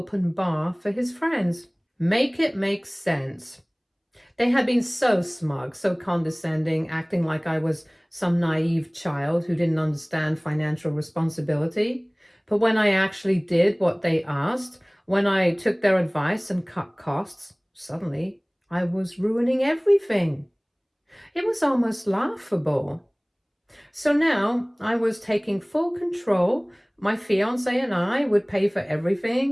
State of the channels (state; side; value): identical; both; correlation 1.00